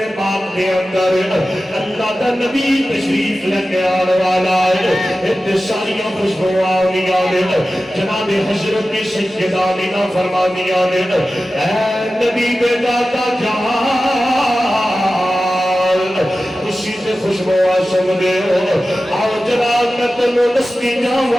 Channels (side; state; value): both; normal; correlation 0.94